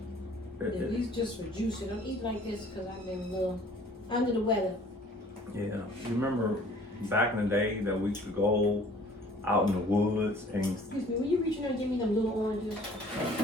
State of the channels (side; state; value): both; normal; correlation 0.53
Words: At least just for juice. I don't eat like this because I've been a little under the weather. Yeah, you remember back in the day that we could go out in the woods and. Excuse me, will you reach in there and give me them little oranges?